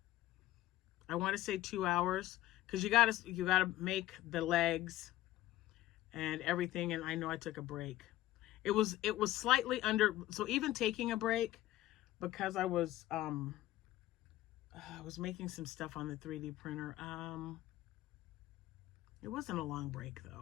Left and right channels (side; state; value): right; quieter; 15.4 dB